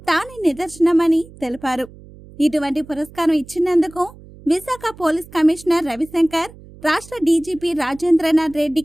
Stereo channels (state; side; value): noise; right; hum, 21 dB below the sound